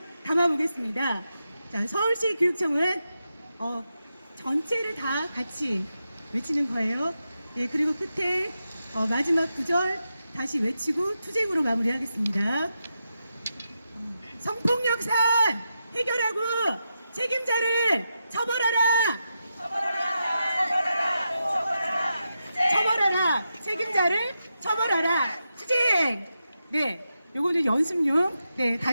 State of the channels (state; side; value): inverted; both; correlation -0.88